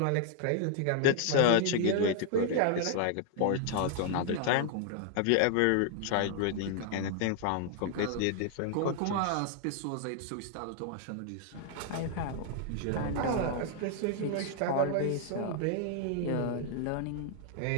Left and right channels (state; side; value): different; both; correlation 0.00